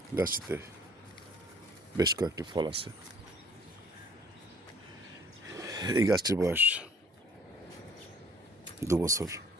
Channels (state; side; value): normal; both; correlation 0.56